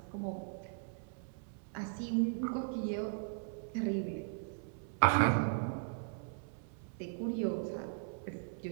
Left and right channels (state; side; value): silent; left; 52 dB below the other